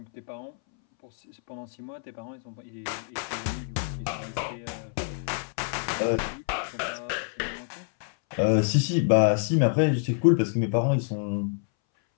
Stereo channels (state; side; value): silent; right; 60 dB below the other